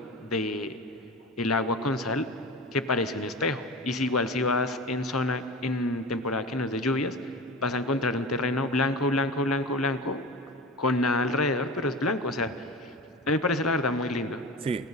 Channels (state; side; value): normal; both; correlation 0.31